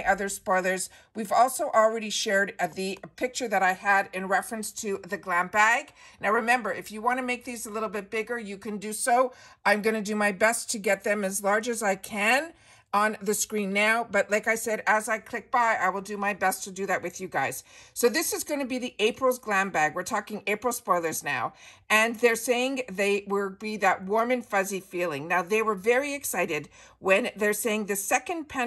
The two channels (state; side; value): identical; both; correlation 1.00